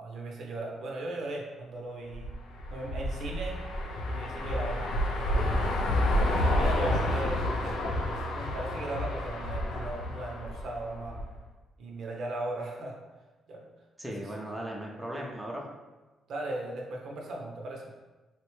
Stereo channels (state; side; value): normal; both; correlation 0.72